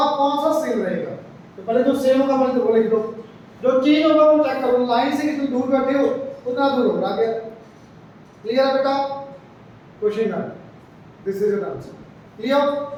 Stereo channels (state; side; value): identical; both; correlation 1.00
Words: कौन सा सेम रहेगा। तो पहले जो सेम होगा पहले तो वो लिख दो, जो चेंज होगा वो चेक करो, लाइन से कितनी दूर बैठे हो उतना दूर होगा क्या। क्लियर है बेटा? क्वेश्चन है, this is an answer. Clear?